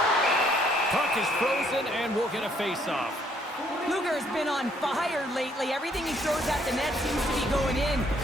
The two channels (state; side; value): normal; both; correlation 0.67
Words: Puck is frozen and we'll get a face-off. Luger has been on fire lately. Everything he throws at the net seems to be going in.